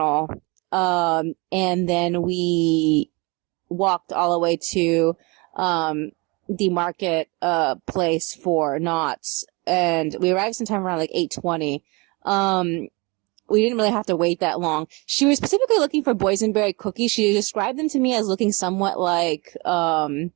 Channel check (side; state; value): left; quieter; 27.4 dB